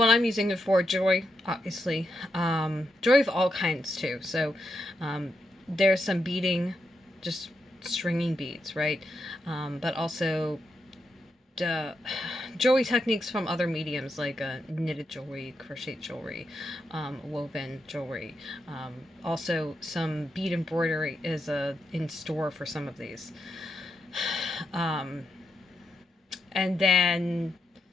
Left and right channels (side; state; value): both; normal; correlation 0.83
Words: I'm using it for, jewelry, obviously. Jewelry of all kinds, too. So there's some beading, just stringing beads, right? But also jewelry techniques from other mediums like knitted jewelry, crochet jewelry, woven jewelry. Also, some bead embroidery is in store for some of these. And then,